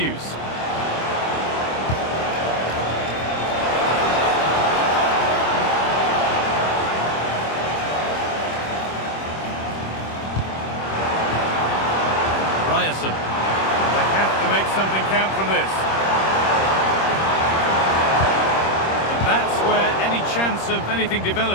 Ryerson. They have to make something count from this. And that's where any chance of anything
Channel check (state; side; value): late; right; 26 ms